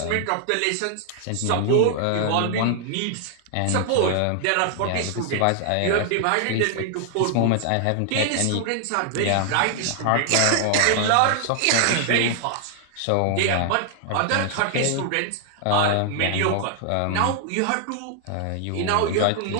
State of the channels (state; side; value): different; both; correlation 0.00